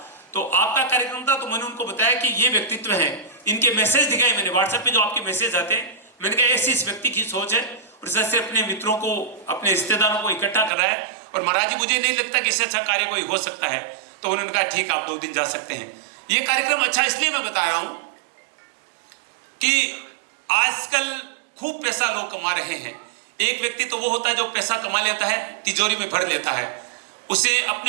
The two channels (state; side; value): drops out; left; at 10.7 s